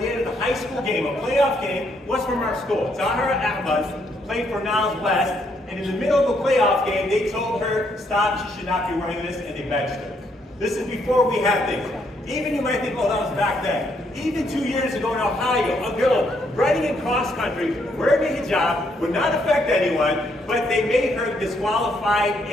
they did a high school game, a playoff game, was from our school. Zahra Ahmad played for Niles West. And in the middle of the playoff game, they told her, stop, she should not be wearing this, and they benched her. This is before we had things. Even you might think, oh, that was back then. Even 2 years ago in Ohio, a girl running in cross country, wearing a hijab, would not affect anyone, but they made her disqualified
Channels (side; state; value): both; normal; correlation 0.73